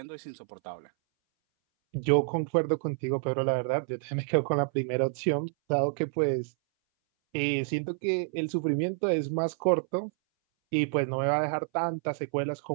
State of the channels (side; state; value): left; silent; 59 dB below the other